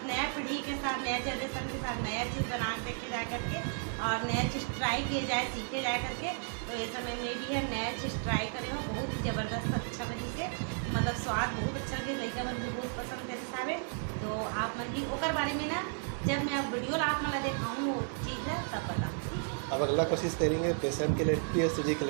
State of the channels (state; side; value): silent; left; 55 dB below the other